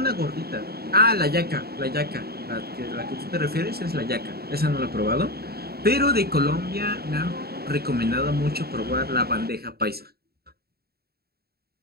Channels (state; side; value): late; left; 0.46 ms